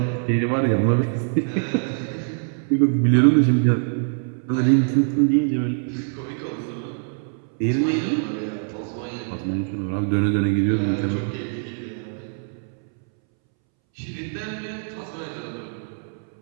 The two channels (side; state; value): left; silent; 63 dB below the other